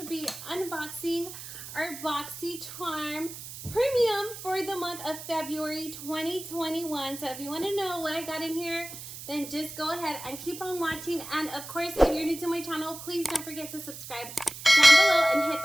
be unboxing our Boxycharm Premium for the month of February 2021. So if you want to know what I got in here, then just go ahead and keep on watching. And of course, if you're new to my channel, please don't forget to subscribe down below and hit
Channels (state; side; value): noise; right; hiss, 12 dB below the sound